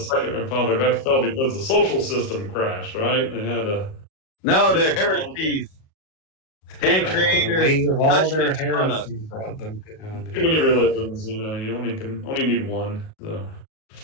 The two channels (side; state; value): right; late; 38 ms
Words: Second Republic, that fell because the social system crashed, right? They had a... No, they're heresies. And creators of all their touched on us. heresies brought them down. Too many religions, you only need one. So.